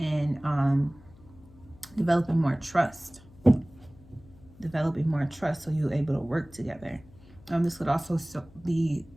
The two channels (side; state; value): left; noise; hum, 24 dB below the sound